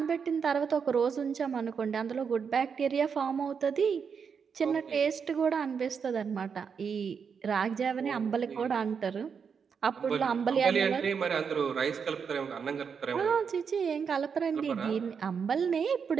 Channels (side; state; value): left; quieter; 6.4 dB